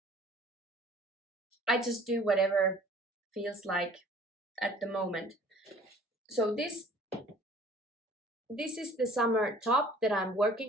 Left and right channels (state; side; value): normal; both; correlation 0.51